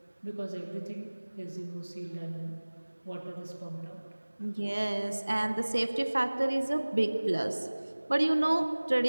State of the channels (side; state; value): both; inverted; correlation -1.00